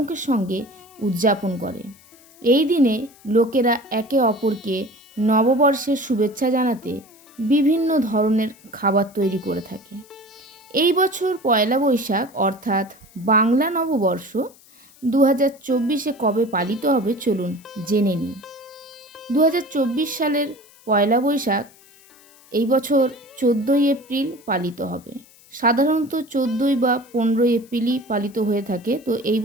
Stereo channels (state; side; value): noise; left; hiss, 26 dB below the sound